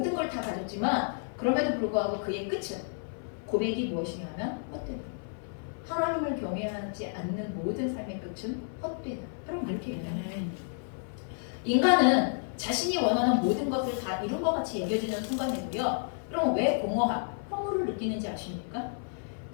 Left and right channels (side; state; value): right; silent; 57 dB below the other